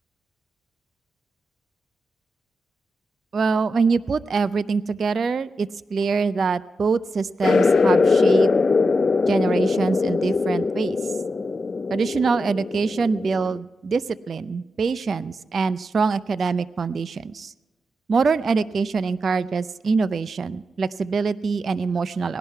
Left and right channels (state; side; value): normal; both; correlation 0.88